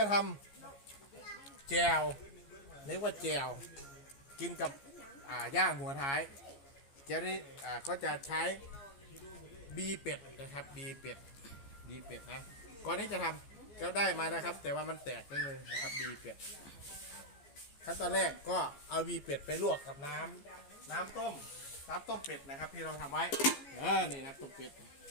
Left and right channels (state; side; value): late; right; 14 ms